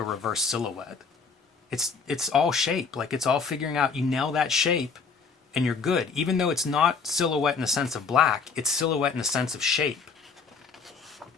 reverse silhouette. It's all shape. Like it's all figuring out, you nail that shape and you're good. Even though it's not silhouette in the sense of black, it's silhouette in the sense of shape.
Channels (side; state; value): right; quieter; 5.2 dB